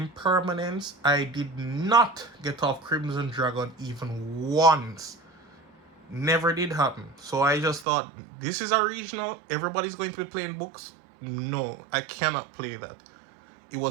I did not get off Crimson Dragon even once. Never did happen. So I just thought, this is a regional, everybody's going to be playing books. No, I cannot play that. It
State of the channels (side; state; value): left; drops out; at 7.9 s